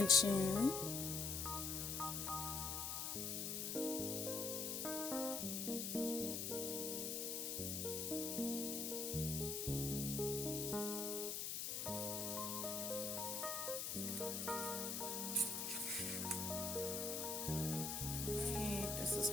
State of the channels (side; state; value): left; noise; hiss, 1 dB below the sound